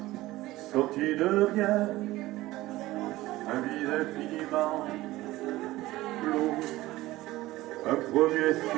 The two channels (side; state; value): left; quieter; 17.6 dB